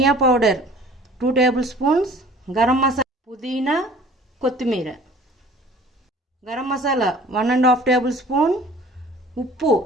powder 2 tablespoons, garam masala, పుదీనా, కొత్తిమీర, గరం మసాలా 1½ టేబుల్ స్పూన్, ఉప్పు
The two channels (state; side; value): normal; both; correlation 0.49